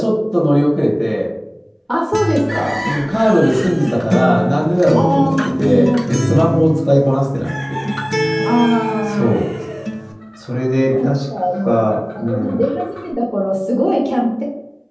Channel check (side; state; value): both; identical; correlation 1.00